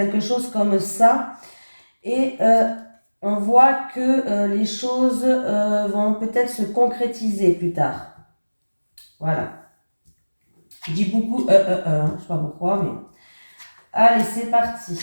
chose comme ça. Et on voit que les choses vont peut-être se concrétiser plus tard. Voilà. Je dis beaucoup je sais pas pourquoi, mais... Allez, c'est parti.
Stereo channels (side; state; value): both; inverted; correlation -1.00